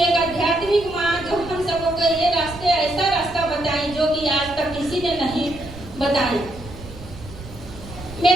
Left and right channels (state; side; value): noise; right; rumble, 15 dB below the sound